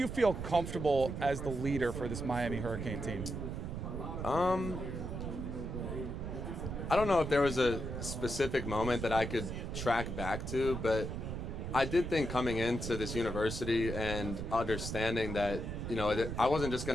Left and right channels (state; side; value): noise; right; rumble, 5 dB below the sound